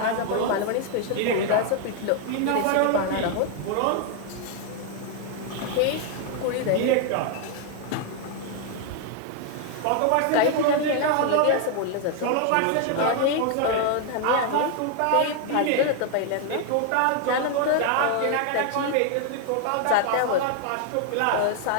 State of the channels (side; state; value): both; different; correlation 0.00